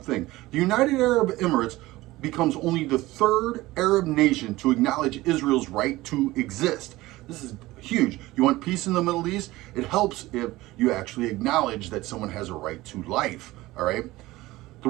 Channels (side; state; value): left; quieter; 18.5 dB